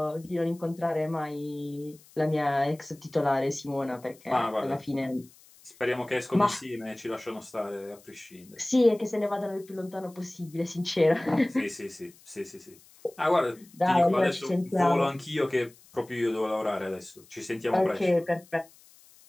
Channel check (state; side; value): noise; left; hiss, 26 dB below the sound